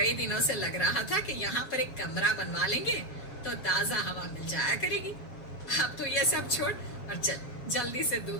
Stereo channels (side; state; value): right; late; 7.0 ms